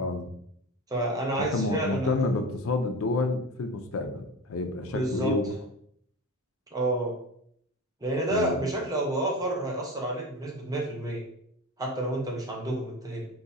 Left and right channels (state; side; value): normal; both; correlation 0.29